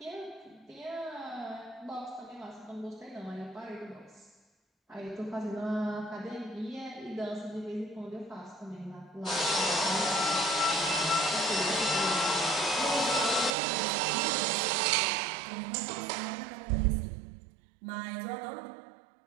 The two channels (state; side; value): drops out; left; at 13.6 s